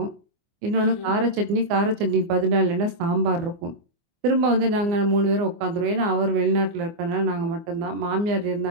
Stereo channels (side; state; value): left; late; 24 ms